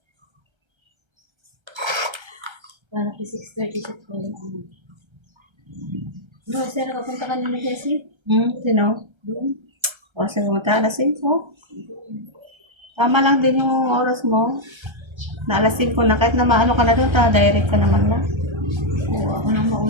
Para ki 6:30 sa kanya. No, sir, nakapunta ka nila Jessie? Sino? Doon. O, sige, pumunta alas 5. Tama lang din yung oras mo. Na alas 5 na. Kahit na maano ka na doon, direct ka naman na. Oo, ako nang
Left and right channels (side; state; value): left; late; 1.3 ms